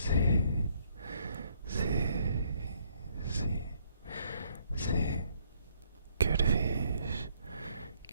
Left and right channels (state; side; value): inverted; both; correlation -0.67